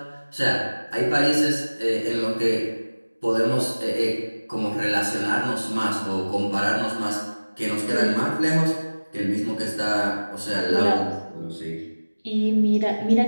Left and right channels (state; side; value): inverted; both; correlation -1.00